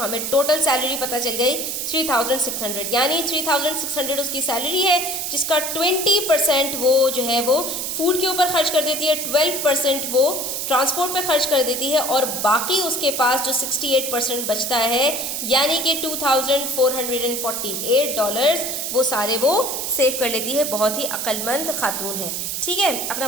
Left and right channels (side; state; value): right; noise; hiss, 3 dB below the sound